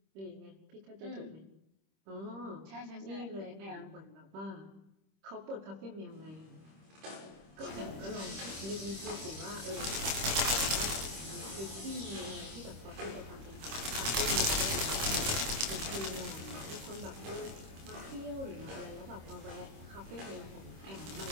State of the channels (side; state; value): left; late; 26 ms